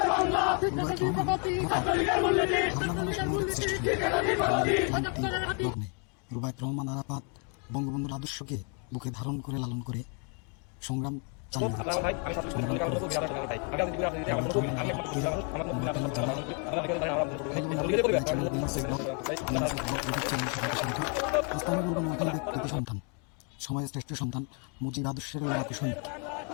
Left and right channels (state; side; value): quieter; right; 37.8 dB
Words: রুবায়েত রহমান আরাফাত বঙ্গবন্ধুর আদর্শকে বুকে ধারণ করে লালন করে সংগ্রাম চালিয়ে সন্তান, সমাজের শ্রেষ্ঠ সন্তান মুজিব আদর্শের কুশলী